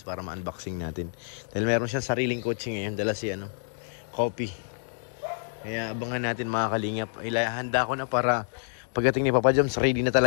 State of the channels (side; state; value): right; silent; digital silence